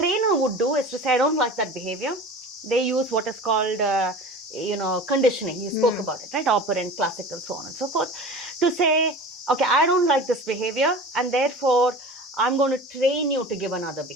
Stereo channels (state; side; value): normal; both; correlation 0.37